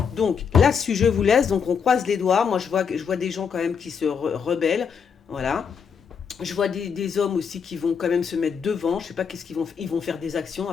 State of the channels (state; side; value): quieter; right; 6.6 dB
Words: Donc, là-dessus, je vous laisse. Donc, on croise les doigts. Moi, je vois des gens quand même qui se rebellent. Voilà. Je vois des hommes aussi qui vont quand même se mettre devant. Je sais pas qu'est-ce qu'ils vont. Ils vont faire des actions